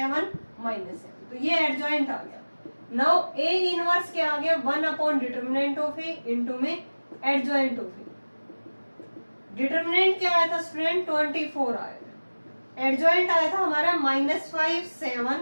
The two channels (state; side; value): inverted; both; correlation -1.00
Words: -7. तो ये एडजॉइंट आ गया. नाउ ए इनवर्स क्या आ गया? 1 upon determinant of A into में एडजॉइंट ऑफ ए. डिटरमिनेंट क्या आया था स्टूडेंट? 24 आया था. एडजॉइंट आया था हमारा -5